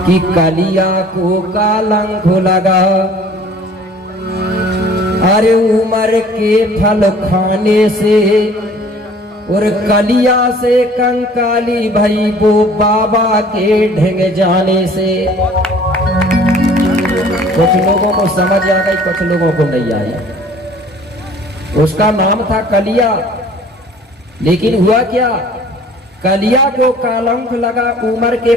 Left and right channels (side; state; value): both; normal; correlation 0.51